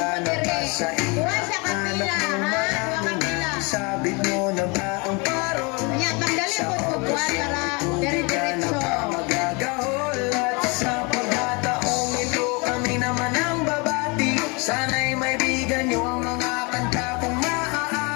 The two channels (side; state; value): right; quieter; 29.4 dB